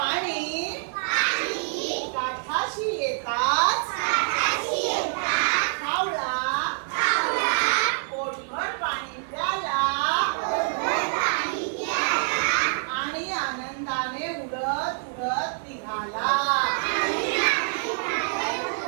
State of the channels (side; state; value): left; silent; 57 dB below the other